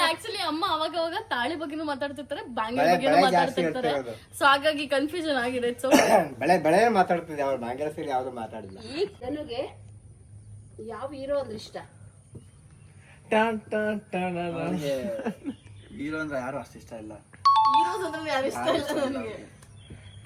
ಆಕ್ಚುಲಿ ಅಮ್ಮ ಅವಾಗ ಅವಾಗ ತಾಳಿ ಬಗ್ಗೆನೂ ಮಾತಾಡ್ತಿರ್ತಾರೆ, ಬ್ಯಾಂಗಲ್ ಬಗ್ಗೆನೂ ಮಾತಾಡ್ತಿರ್ತಾರೆ. ಸೊ ಹಾಗಾಗಿ ಕನ್ಫ್ಯೂಷನ್ ಆಗಿದೆ. ಸೊ ಬೆಳೆ ಮಾತಾಡ್ತಿದ್ದೆ, ಅವ್ರು ಬಾಂಗ್ಲ ಸೀರೆ ಯಾವ್ದು ಮಾತಾಡಿಲ್ಲ. ಈಗ ನನಗೆ ಯಾವ ಹೀರೋ ಅಂದ್ರೆ ಇಷ್ಟ? ಹೀರೋ ಅಂದ್ರೆ ಯಾರು ಅಷ್ಟು ಇಷ್ಟ ಇಲ್ಲ. ಹೀರೋಸ್ ಅಂದ್ರೆ ಯಾರು ಇಷ್ಟ ಇಲ್ಲ ನನಗೆ.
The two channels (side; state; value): both; identical; correlation 1.00